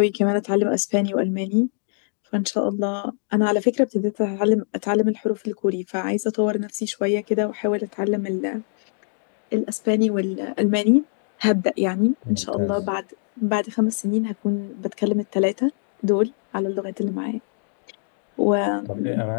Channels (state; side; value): silent; right; digital silence